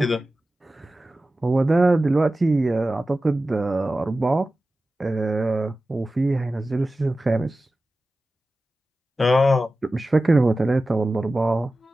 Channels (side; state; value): both; normal; correlation 0.95